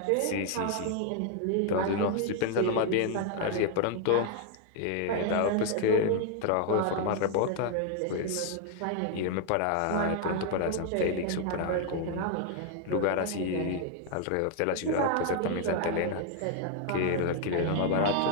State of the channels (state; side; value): different; both; correlation 0.00